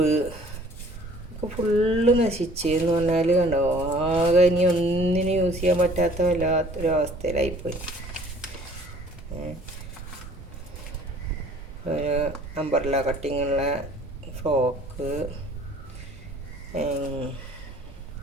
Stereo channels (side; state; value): both; normal; correlation 0.53